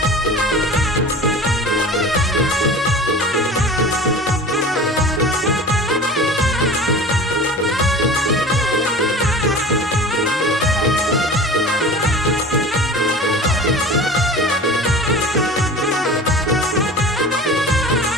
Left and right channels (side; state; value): both; normal; correlation 0.37